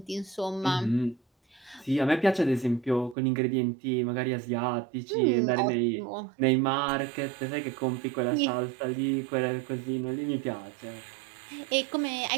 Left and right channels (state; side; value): drops out; left; at 3.2 s